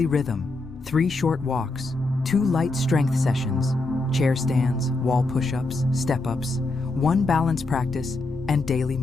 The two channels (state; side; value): quieter; right; 3.1 dB